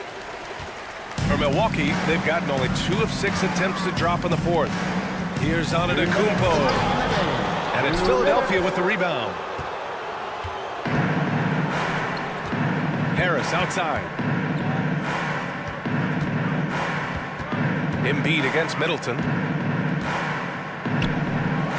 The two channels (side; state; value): both; identical; correlation 1.00